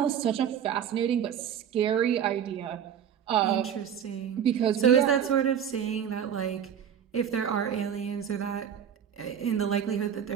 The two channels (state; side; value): quieter; left; 8.7 dB